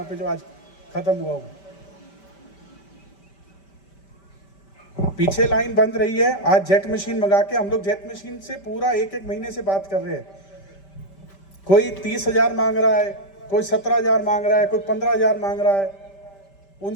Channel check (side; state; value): right; late; 5.1 ms